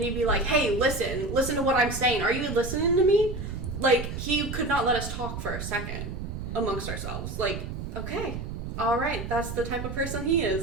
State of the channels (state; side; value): noise; right; rumble, 6 dB below the sound